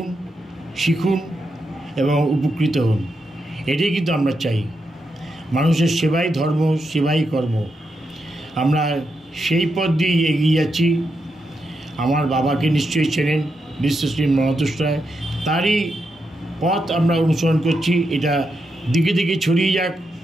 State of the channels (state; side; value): normal; both; correlation 0.84